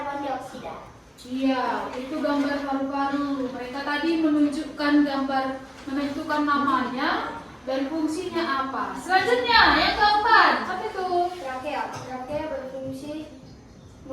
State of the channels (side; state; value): both; identical; correlation 1.00